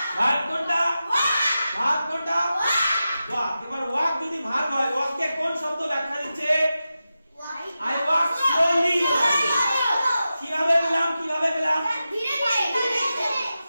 ভাগ কোনটা? ভাগ কোনটা? ওয়াক। এবার ওয়াক যদি ভাগ হয়, ওয়াককে কোন শব্দ ব্যাখ্যা দিচ্ছে? I walk slowly. কিভাবে পেলাম? কিভাবে পেলাম?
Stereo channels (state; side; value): inverted; both; correlation -0.92